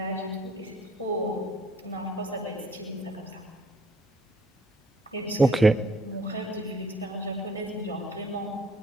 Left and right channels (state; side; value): normal; both; correlation 0.60